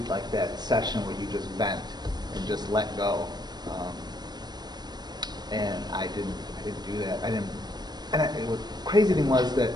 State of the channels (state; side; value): late; left; 0.20 ms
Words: like that session where you just vent and just let go. And I didn't do that. And the crazy thing was that